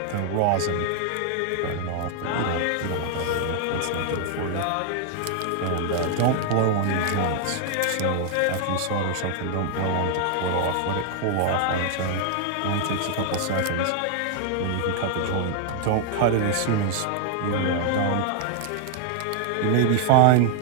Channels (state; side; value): different; both; correlation 0.00